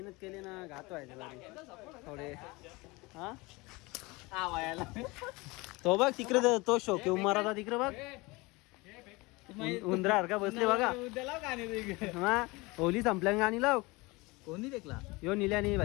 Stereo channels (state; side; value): quieter; right; 24.1 dB